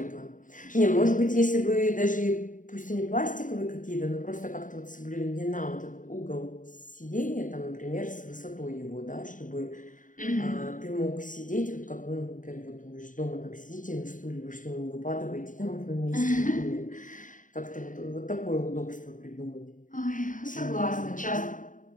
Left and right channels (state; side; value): late; right; 0.38 ms